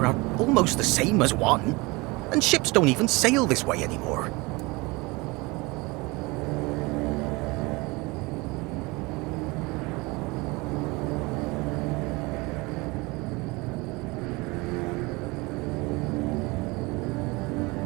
are almost the same as one, and ships don't even sail this way anymore.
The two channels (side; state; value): left; quieter; 24.6 dB